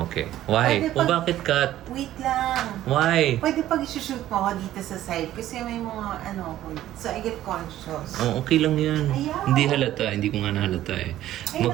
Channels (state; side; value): quieter; left; 13.4 dB